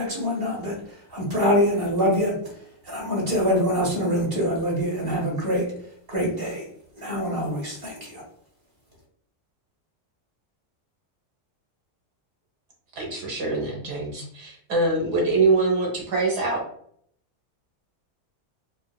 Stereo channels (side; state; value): left; late; 2.8 ms